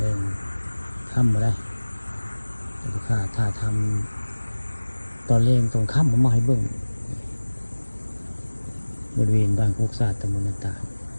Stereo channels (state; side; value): inverted; both; correlation -1.00